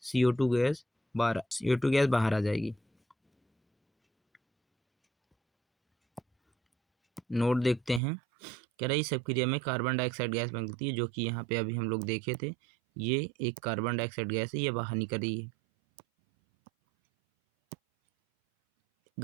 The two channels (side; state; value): left; drops out; at 8.0 s